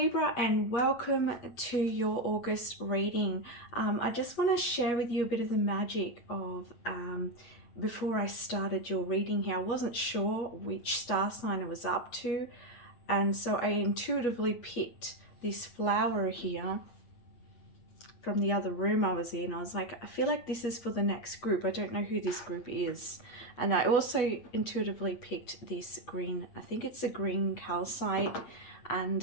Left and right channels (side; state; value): right; late; 8.3 ms